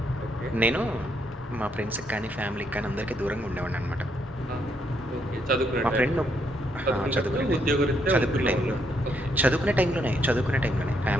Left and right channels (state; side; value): normal; both; correlation 0.74